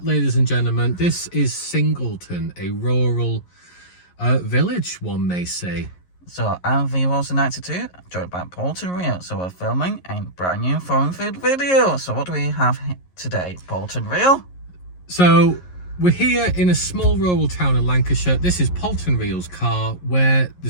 ladies and gentlemen. This is Singleton, a rural village, one may say. So I'm V-Wilson92, joined by Bolton Real. So we're filming a brand new foreign food video. So what do we have today, Bolton Real? So we're here in a small rural town in Lancashire. This is Bolton Real's car, where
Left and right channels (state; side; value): late; right; 11 ms